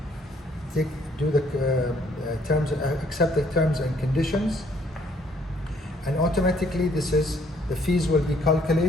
do the accept the terms and conditions, and automatically the fees will be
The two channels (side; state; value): both; normal; correlation 0.64